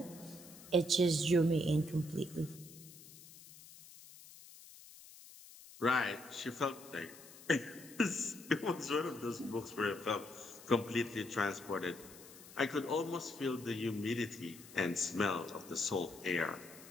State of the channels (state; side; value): noise; left; hiss, 18 dB below the sound